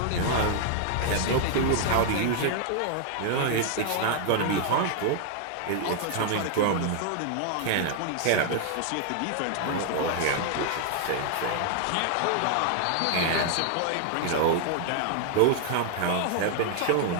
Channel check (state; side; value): different; both; correlation 0.00